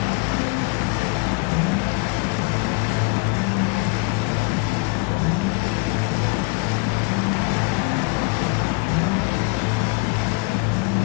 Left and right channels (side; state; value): right; quieter; 29.4 dB